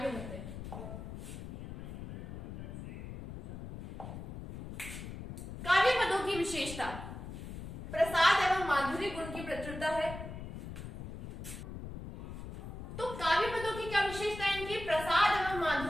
बढ़ते हैं। काव्य पदों की विशेषता, प्रसाद एवं माधुर्य गुण की प्रचुरता है। तो काव्य पदों की क्या विशेषता है, इनकी प्रसाद एवं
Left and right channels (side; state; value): left; noise; rumble, 10 dB below the sound